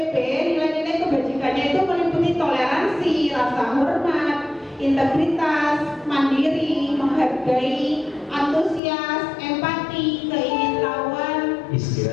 nilai-nilai kebajikannya itu meliputi toleransi, rasa hormat, integritas, mandiri, menghargai, antusias, empati, keingintahuan.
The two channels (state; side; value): drops out; right; at 8.8 s